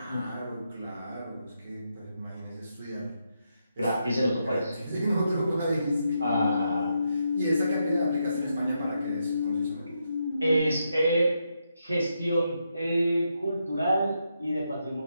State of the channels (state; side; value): inverted; both; correlation -0.82